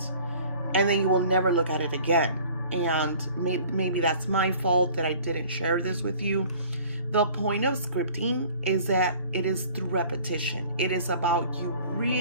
and then you will never look at it again. And maybe that's my fault that I didn't share this with you. The point of scripting is that it is through repetition. It is about you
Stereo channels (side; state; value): both; inverted; correlation -0.50